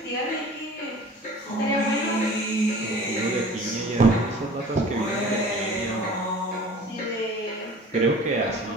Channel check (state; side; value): normal; both; correlation 0.44